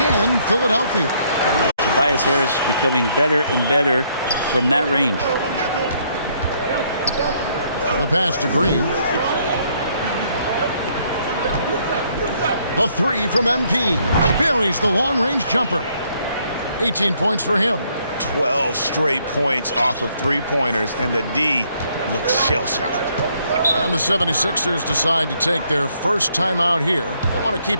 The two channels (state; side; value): inverted; both; correlation -0.69